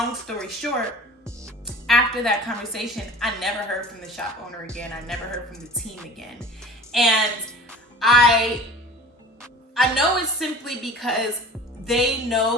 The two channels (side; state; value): both; normal; correlation 0.40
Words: story short, after that conversation, I never heard from the shop owner again. I never heard from the team again. And I know it's simply because they